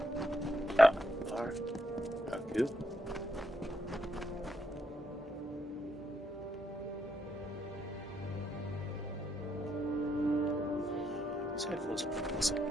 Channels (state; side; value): normal; both; correlation 0.77